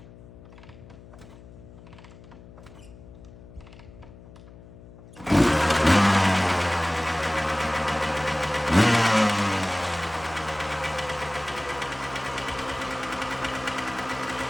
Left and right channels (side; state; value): left; noise; hum, 19 dB below the sound